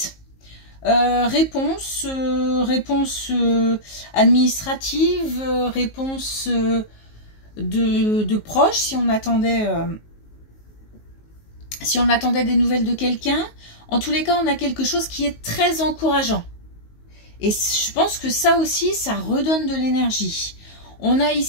Réponse, réponse administrative, réponse de proches, si on attendait des nouvelles de quelqu'un. En tous les cas, on a quelque chose qui est très encourageant. Et je pense que ça aussi, ça redonne de l'énergie. On a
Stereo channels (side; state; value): right; late; 19 ms